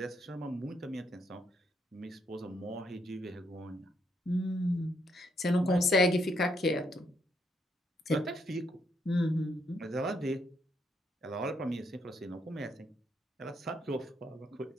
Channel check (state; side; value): normal; both; correlation 0.75